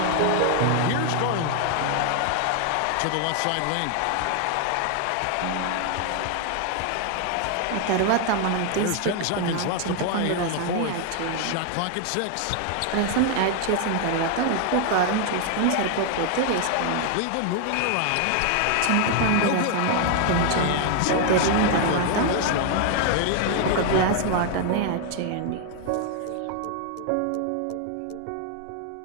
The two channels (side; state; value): both; different; correlation 0.00